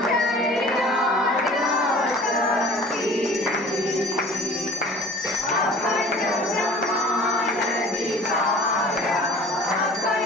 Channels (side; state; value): both; normal; correlation 0.45